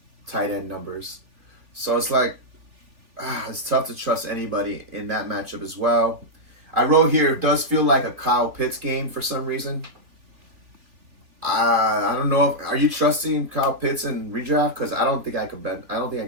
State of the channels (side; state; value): left; late; 2.8 ms